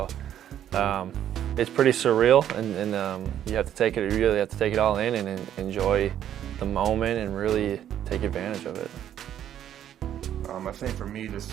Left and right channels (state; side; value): quieter; left; 10.6 dB